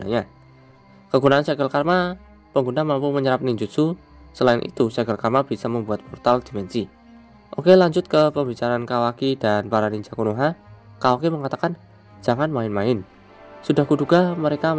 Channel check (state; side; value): identical; both; correlation 1.00